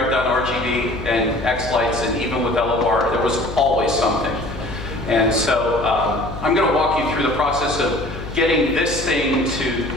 done RGB and xLights, and even with LOR, there was always something. And so I'm going to walk you through the process of getting this thing to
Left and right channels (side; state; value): left; noise; hum, 10 dB below the sound